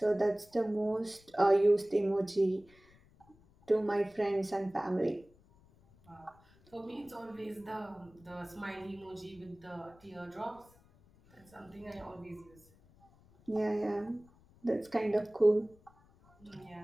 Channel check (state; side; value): noise; left; rumble, 28 dB below the sound